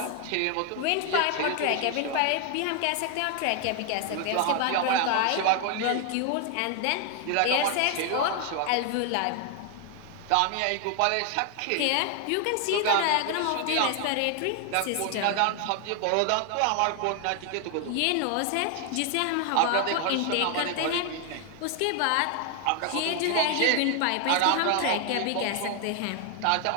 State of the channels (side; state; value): both; different; correlation 0.00